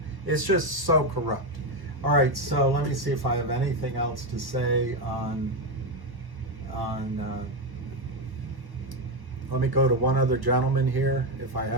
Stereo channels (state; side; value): late; left; 1.1 ms